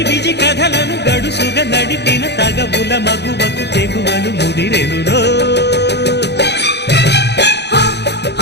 కథలను గడుసుగా నడిపిన తగబుల మగువకు తెగువలు ముదిరెనురో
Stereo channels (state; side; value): late; right; 0.49 ms